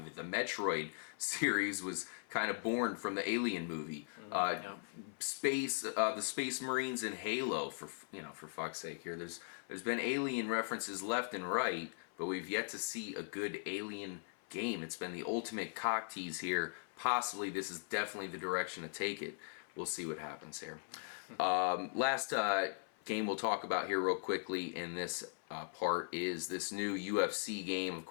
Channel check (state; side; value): silent; right; 51 dB below the other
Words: it. The Metroid series was kind of born from the Alien movie. The Space Marines and Halo, for fuck's sake here. There's been Alien references left and right, but we've yet to see a good Alien game. It's been the ultimate cock tease here. Possibly this is definitely the direction to take it. We'll see what happens here. Last game we'll talk about here real quickly in this part is this new UFC game. Of